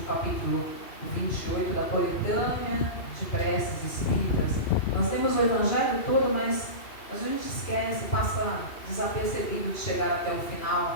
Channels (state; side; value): late; right; 2.7 ms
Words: capítulo 28 da coletânea de preces espíritas. Nós temos o Evangelho todo, mas a gente esquece, passa desapercebido de chegar até o